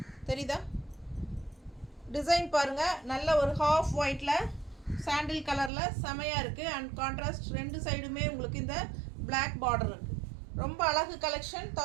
தெரியுதா? டிசைன் பாருங்கள், நல்ல ஒரு ஹாஃப் ஒயிட்டில் சாண்டில் கலரில் செமையாக இருக்குது. அண்ட் கான்ட்ராஸ்ட் ரெண்டு சைடுமே உங்களுக்கு இந்த பிளாக் பார்டர் இருக்குது. ரொம்ப அழகு கலெக்ஷன்.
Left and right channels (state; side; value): drops out; left; at 5.7 s